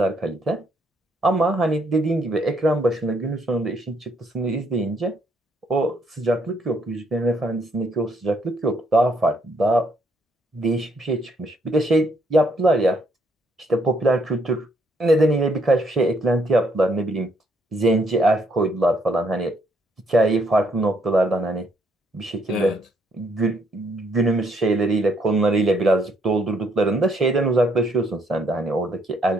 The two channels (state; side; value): normal; both; correlation 0.70